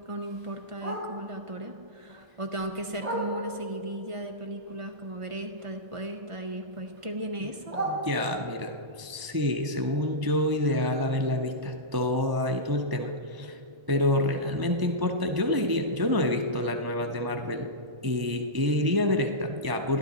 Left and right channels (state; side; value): late; left; 1.0 ms